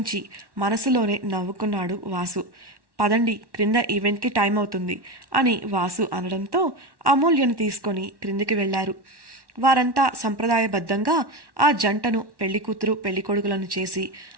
మనసులోనే నవ్వుకున్నాడు వాసు. పదండి, క్రింద ఈవెంట్కి టైం అవుతుంది అని వాసు అనడంతో అమూల్యను తీసుకొని క్రిందికి వెళ్లారు. వారంతా సంప్రదాయబద్ధంగా ఆ జంటను పెళ్లికూతురు పెళ్లికొడుకులను చేసి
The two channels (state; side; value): late; left; 1.1 ms